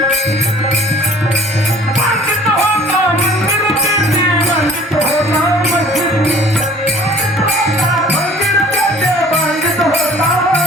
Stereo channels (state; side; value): normal; both; correlation 0.50